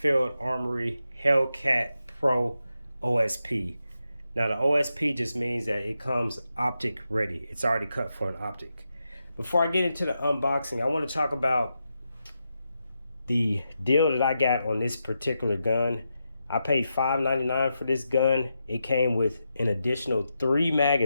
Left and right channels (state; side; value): inverted; both; correlation -0.87